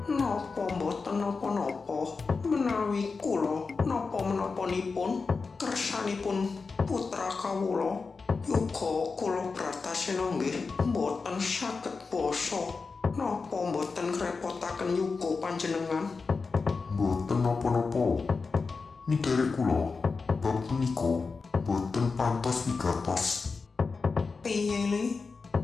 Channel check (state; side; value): quieter; right; 4.5 dB